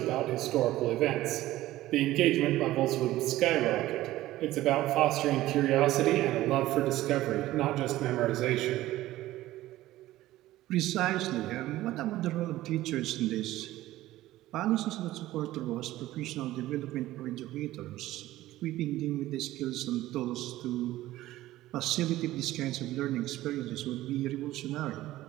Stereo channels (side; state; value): left; quieter; 15.8 dB